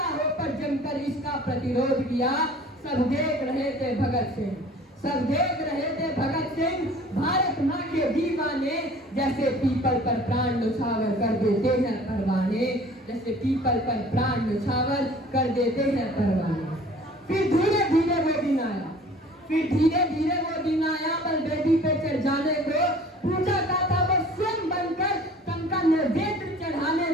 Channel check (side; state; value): both; normal; correlation 0.48